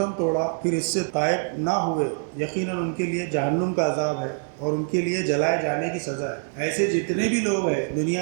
توڑا پھر اس سے تائب نہ ہوئے، یقیناً ان کے لیے جہنم کا عذاب ہے اور ان کے لیے جلائے جانے کی سزا ہے۔ ایسے جتنے بھی لوگ ہیں دنیا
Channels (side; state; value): left; silent; 55 dB below the other